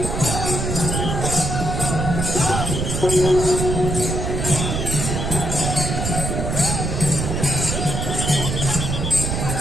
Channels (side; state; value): right; noise; rumble, 2 dB below the sound